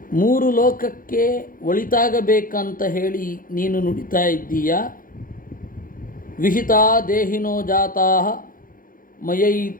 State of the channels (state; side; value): late; right; 0.40 ms